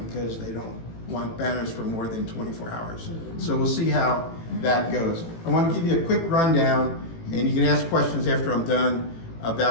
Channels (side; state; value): right; late; 18 ms